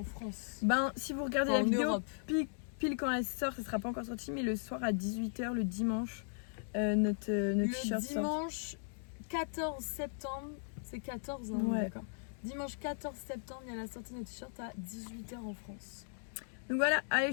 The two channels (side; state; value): right; silent; digital silence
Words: France. Ben si vous regardez En la vidéo Europe. pile quand elle sort, ça sera pas encore sorti, mais le soir à 18h le dimanche, notre t-shirt Le sort. dimanche 14 septembre, c'est 14 hein, Ouais. d'accord. Dimanche 14 septembre, il y a la sortie de notre t-shirt à 18h en France. Donc voilà, allez